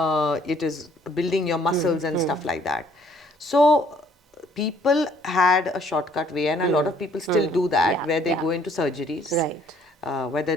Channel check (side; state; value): both; normal; correlation 0.61